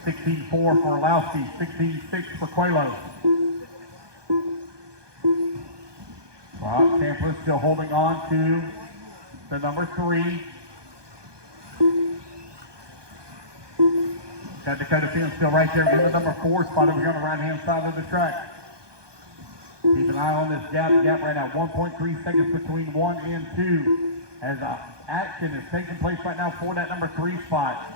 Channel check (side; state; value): left; late; 1.2 ms